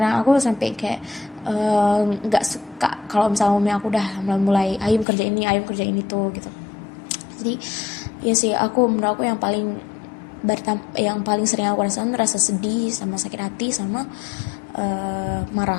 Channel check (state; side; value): drops out; right; at 5.1 s